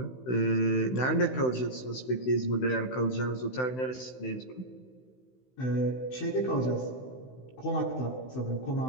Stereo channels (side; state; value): right; late; 16 ms